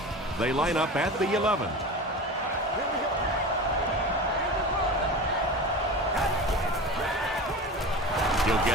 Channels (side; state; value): both; normal; correlation 0.31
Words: They line up at the 11. He'll